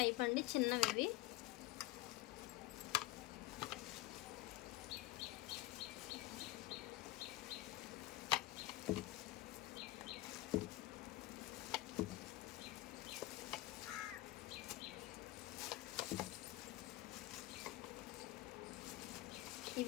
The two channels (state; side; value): quieter; right; 17.2 dB